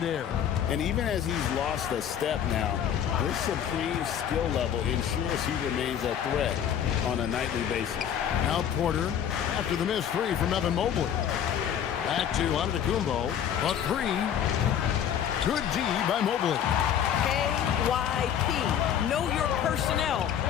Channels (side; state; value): right; quieter; 9.2 dB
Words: air. And even as he's lost a step now, his supreme skill level ensures he remains a threat on a nightly basis. Now Porter, after the missed 3 from Evan Mobley. Back to Antetokounmpo. A 3. Good D by Mobley. KYP. Know your personnel.